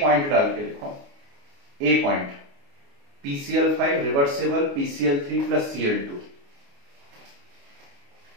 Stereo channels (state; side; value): late; left; 29 ms